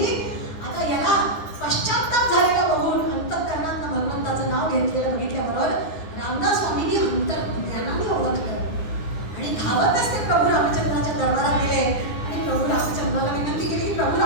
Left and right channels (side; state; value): right; late; 9.9 ms